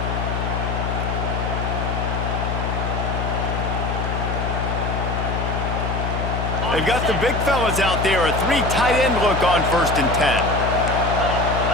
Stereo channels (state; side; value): noise; left; hum, 2 dB below the sound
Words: They've got the big fellas out there. A 3 tight end look on 1st and 10.